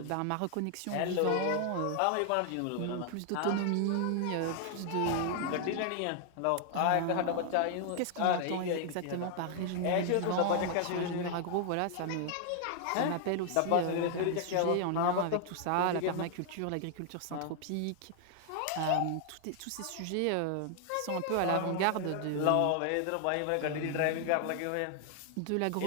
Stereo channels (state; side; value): different; both; correlation 0.00